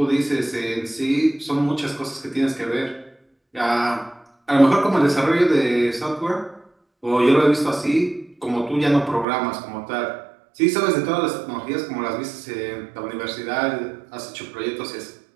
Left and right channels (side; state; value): left; drops out; at 9.2 s